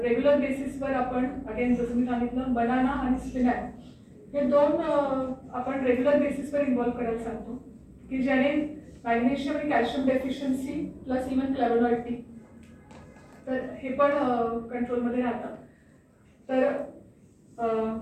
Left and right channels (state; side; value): identical; both; correlation 1.00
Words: बेसिसवर आपण अगेन जसं मी सांगितलं बनाना आणि स्पिनॅच हे 2 आपण रेग्युलर बेसिसवर इन्व्हॉल्व करायला सांगतो, की ज्याने मॅग्नेशियम आणि कॅल्शियम डेफिशियन्सी प्लस इव्हन फ्लॅवोनॉइड तर हे पण कंट्रोलमध्ये राहतात. तर